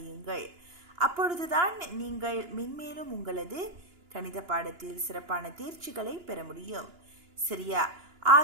அப்பொழுதுதான் நீங்கள் மென்மேலும் உங்களது கணித பாடத்தில் சிறப்பான தேர்ச்சிகளை பெற முடியும். சரியா?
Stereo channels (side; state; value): left; late; 2.9 ms